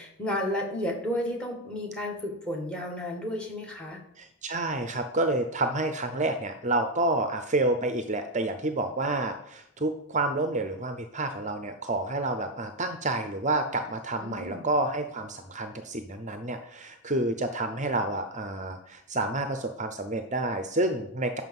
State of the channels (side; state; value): both; normal; correlation 0.05